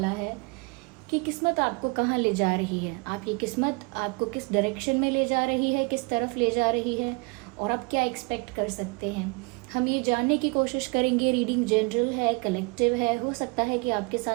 है कि किस्मत आपको कहाँ ले जा रही है। आपकी किस्मत आपको किस डायरेक्शन में ले जा रही है, किस तरफ ले जा रही है और आप क्या एक्सपेक्ट कर सकते हैं। हम ये जानने की कोशिश करेंगे। रीडिंग जनरल है, कलेक्टिव है, हो सकता है कि आपके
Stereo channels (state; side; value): quieter; left; 29.8 dB